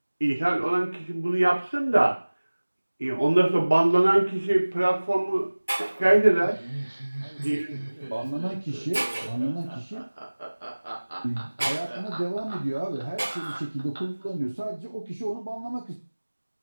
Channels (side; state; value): both; inverted; correlation -1.00